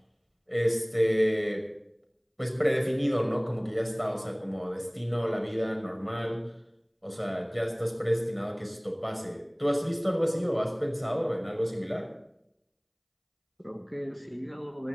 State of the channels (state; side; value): identical; both; correlation 1.00